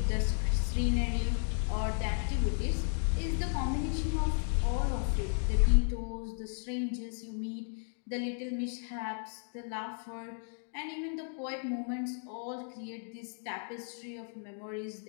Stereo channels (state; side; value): silent; right; 55 dB below the other